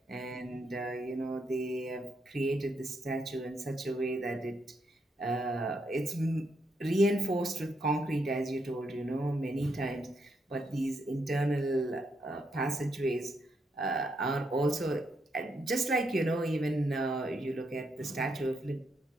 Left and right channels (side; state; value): both; normal; correlation 0.79